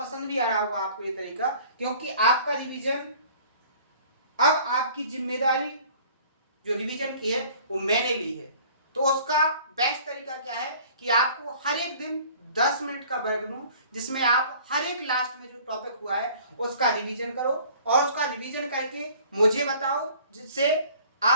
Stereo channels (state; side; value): inverted; both; correlation -0.51